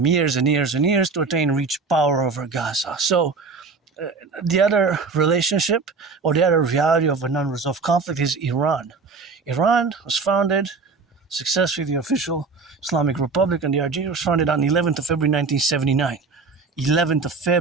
years and years and years to reach power over Gaza. So the other relationship or the other reality of an unresolved conflict is Iran. Iran was founded successfully, the official Islamic Republic and the RG was founded on 11th of February 1979. 11th of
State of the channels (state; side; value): quieter; left; 4.5 dB